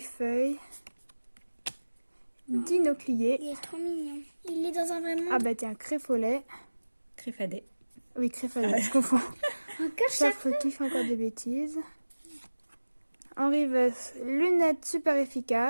Dinoclier. Il est trop mignon. Il est dans un vrai monde. Ah bah tiens, Créfolet. Créfadé. Oui, Créfolet, je confonds. Encore ça. Chaque fautif, encore des bêtises. Henri Vess, lunettes super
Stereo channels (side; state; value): both; inverted; correlation -1.00